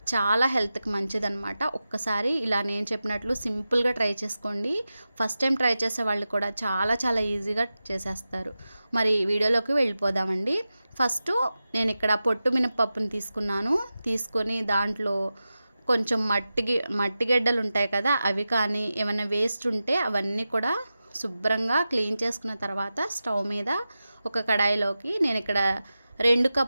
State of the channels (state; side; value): inverted; both; correlation -0.93